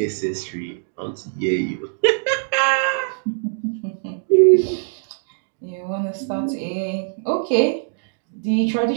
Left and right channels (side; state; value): left; silent; digital silence